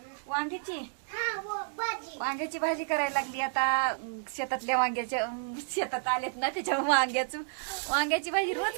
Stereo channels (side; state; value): left; silent; digital silence